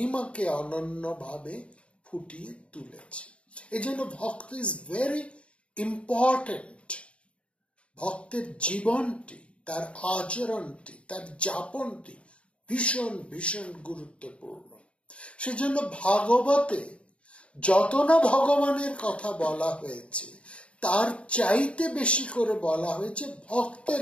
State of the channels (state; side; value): late; right; 0.061 ms